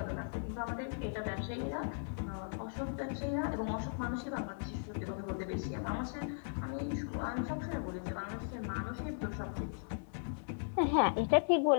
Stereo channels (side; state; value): right; silent; digital silence